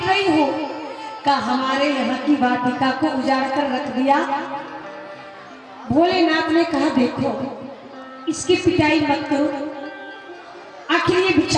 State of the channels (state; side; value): identical; both; correlation 1.00